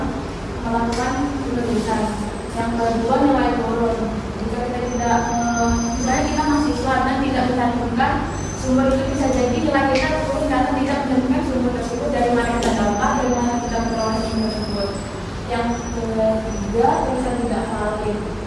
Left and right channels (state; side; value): identical; both; correlation 1.00